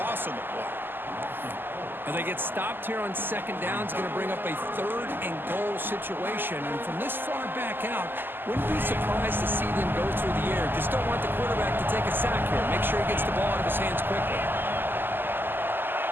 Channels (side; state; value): left; late; 0.095 ms